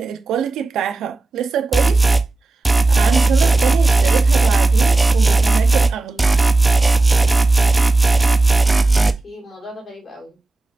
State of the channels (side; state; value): left; quieter; 3.0 dB